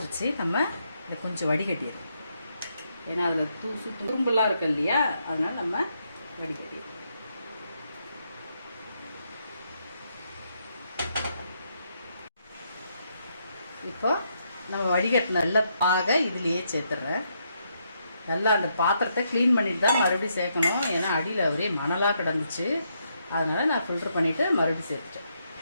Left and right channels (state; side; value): inverted; both; correlation -0.77